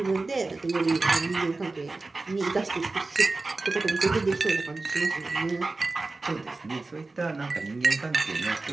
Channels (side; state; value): left; quieter; 3.4 dB